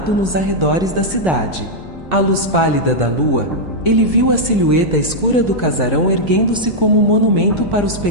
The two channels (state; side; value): normal; both; correlation -0.05